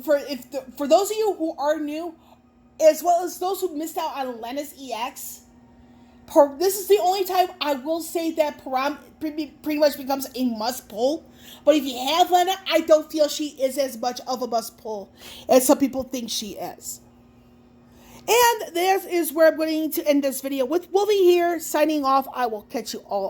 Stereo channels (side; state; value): both; identical; correlation 1.00